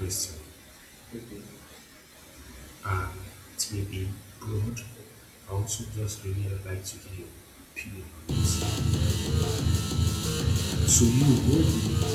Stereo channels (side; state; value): both; identical; correlation 1.00